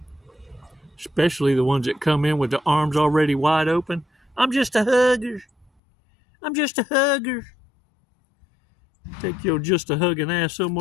Especially the ones that come in with the arms already wide open. I'm just a hugger. I'm just a hugger. Take your just a hugging ass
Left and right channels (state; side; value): drops out; right; at 5.7 s